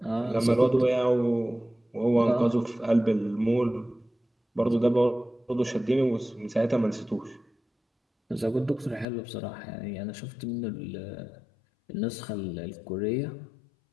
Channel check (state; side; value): drops out; right; at 9.1 s